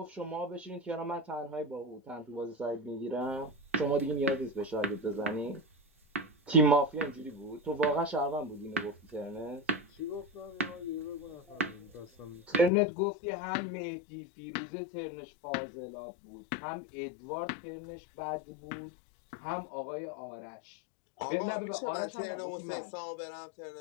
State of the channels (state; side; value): drops out; right; at 12.7 s